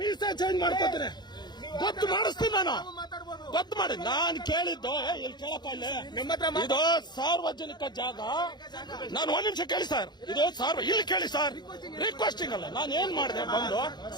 ಚೇಂಜ್ ಮಾಡ್ಕೋತೀನಿ. ಗೊತ್ತು ಮಾಡಿಸ್ತೀನಿ ನಾನು. ಗೊತ್ತು ಮಾಡಿ. ನಾನು ಕೇಳಿದ್ದು ಇಲ್ಲಿ ಕೇಳಪ್ಪ, ಇಲ್ಲಿ ಇದು ಸಾರ್ವಜನಿಕ ಜಾಗ. ನಾನು 1 ನಿಮಿಷ ಕೇಳಿ ಸರ್. ಇದು ಇಲ್ಲಿ ಕೇಳಿ ಸರ್. ರಿಕ್ವೆಸ್ಟಿಂಗ್ ಅಲ್ಲ. ನಾನು ಏನ್ ಮಾಡಿದೆ ಬಂದು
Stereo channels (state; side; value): late; right; 0.21 ms